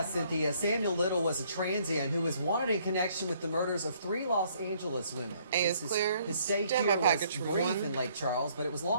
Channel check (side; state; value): both; inverted; correlation -0.65